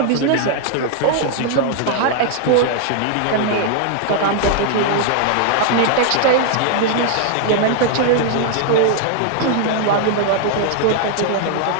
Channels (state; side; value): different; both; correlation 0.00